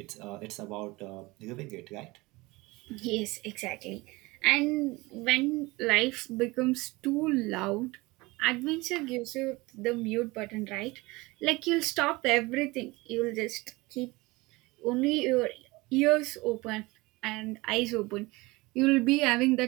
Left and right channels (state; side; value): quieter; left; 22.5 dB